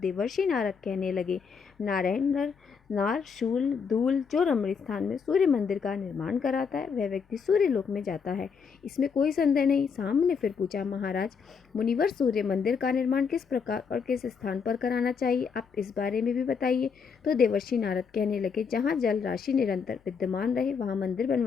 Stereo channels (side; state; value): right; quieter; 6.0 dB